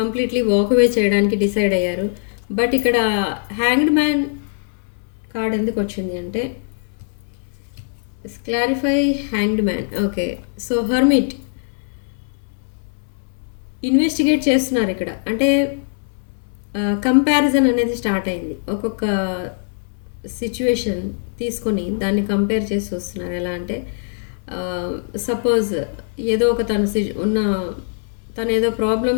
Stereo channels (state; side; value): silent; right; 65 dB below the other